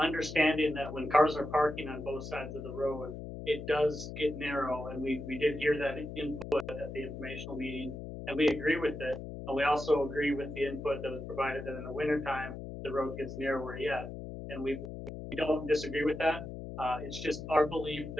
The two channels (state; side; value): noise; left; hum, 9 dB below the sound